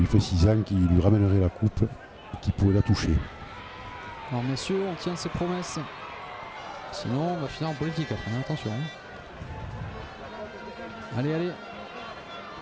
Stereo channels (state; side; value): identical; both; correlation 1.00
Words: fait 6 ans qui lui ramènerait la coupe et qui pourrait la toucher. Alors messieurs, on tient ses promesses. Sinon on va finir en politique après, hein, attention. Hein. Allez.